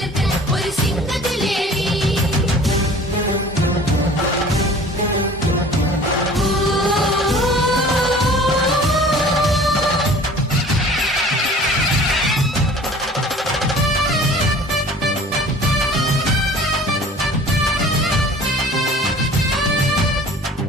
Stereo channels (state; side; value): normal; both; correlation 0.46